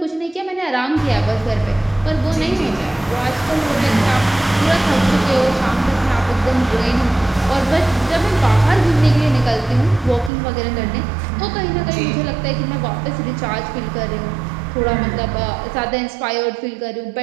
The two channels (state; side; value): drops out; left; at 10.3 s